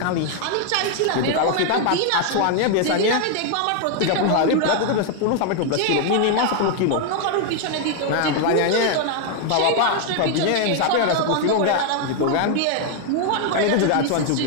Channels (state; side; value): different; both; correlation 0.00